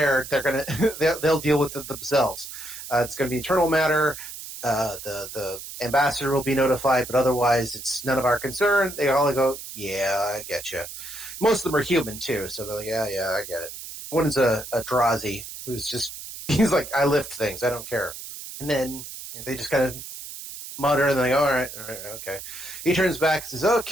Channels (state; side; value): noise; right; hiss, 11 dB below the sound